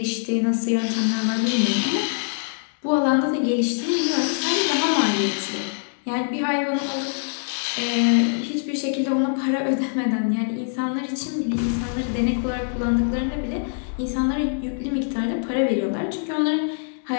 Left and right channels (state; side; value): silent; right; digital silence